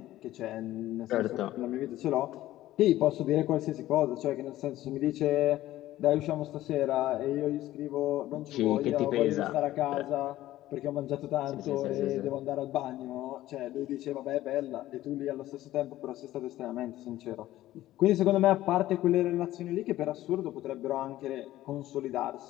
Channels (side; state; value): right; quieter; 14.9 dB